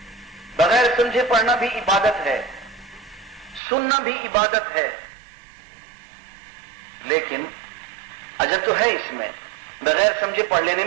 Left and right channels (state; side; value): drops out; left; at 3.6 s